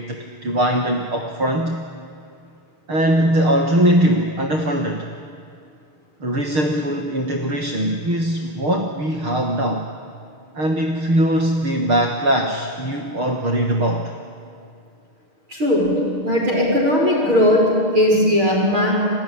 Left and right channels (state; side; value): late; left; 6.4 ms